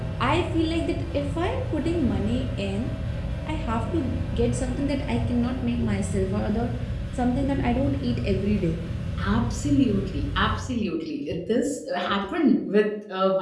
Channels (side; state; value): both; identical; correlation 1.00